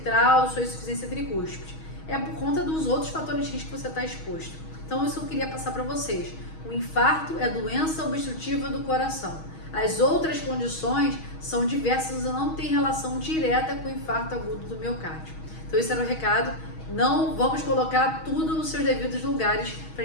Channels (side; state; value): right; late; 6.3 ms